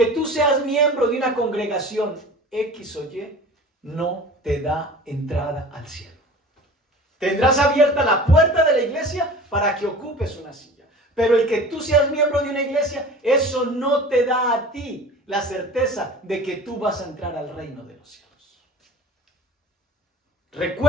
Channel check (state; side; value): normal; both; correlation 0.40